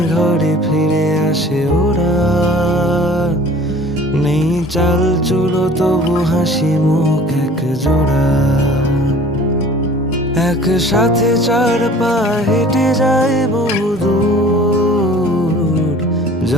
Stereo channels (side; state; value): both; normal; correlation 0.47